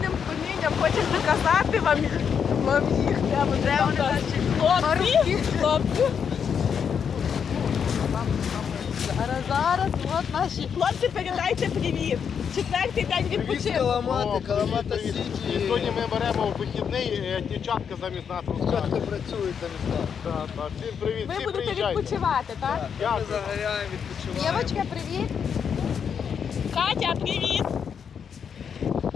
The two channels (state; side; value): quieter; right; 7.2 dB